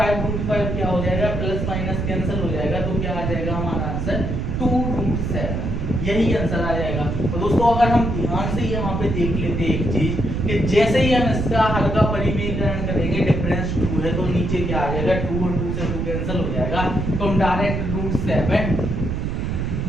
क्या हो जाएगा, प्लस माइनस कैंसिल हो जाएगा, तो क्या आ जाएगा हमारा आंसर 2√7, यही आंसर आ जाएगा। तो दोस्तों अगर हम ध्यान से यहाँ पे देख लेते एक चीज कि जैसे ही हम इसका हर का परिमेयकरण करेंगे, डिफरेंस 2 है तो नीचे क्या आ जाएगा, 2 और 2 से 2 कैंसिल हो जाएगा, तो हम डायरेक्ट √7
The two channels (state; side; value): noise; right; rumble, 1 dB below the sound